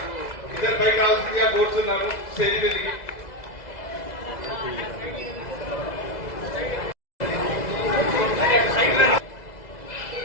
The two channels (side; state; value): right; late; 2.0 ms